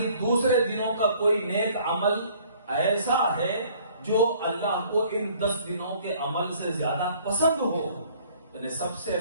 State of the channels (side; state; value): both; inverted; correlation -0.56